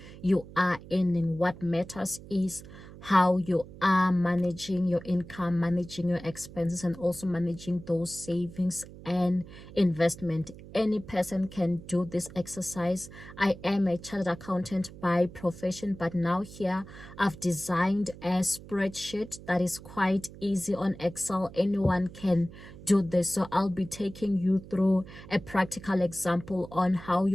you are earning. What matters is how you are managing your income, managing your expenses, and also managing those savings and investment. Any person can do this exercise. I am a chartered accountant by profession, but now here I've designed a spreadsheet that is quite easy on Excel. Anyone can do this. So I'll be taking you through a practical example on how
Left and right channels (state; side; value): noise; right; hum, 16 dB below the sound